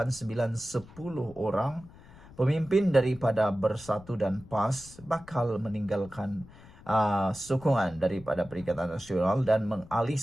9, 10 orang pemimpin daripada Bersatu dan PAS bakal meninggalkan sokongan daripada Perikatan Nasional dan mengalih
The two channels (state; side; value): noise; left; rumble, 21 dB below the sound